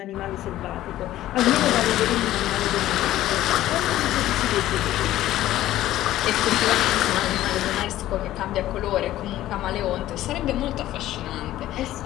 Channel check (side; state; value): right; quieter; 14.2 dB